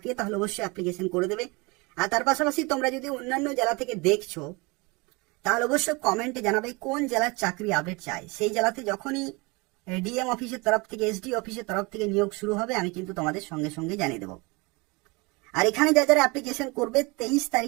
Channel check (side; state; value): left; quieter; 26.6 dB